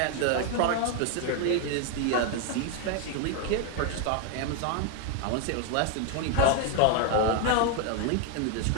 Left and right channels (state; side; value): different; both; correlation 0.01